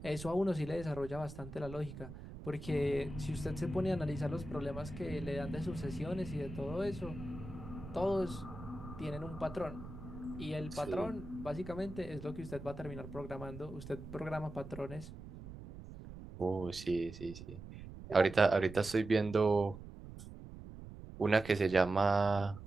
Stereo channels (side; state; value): right; noise; rumble, 13 dB below the sound